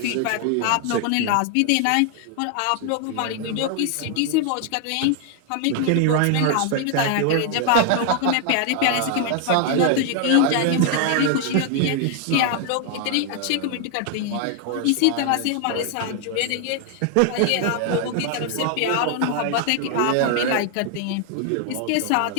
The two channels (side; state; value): both; different; correlation 0.00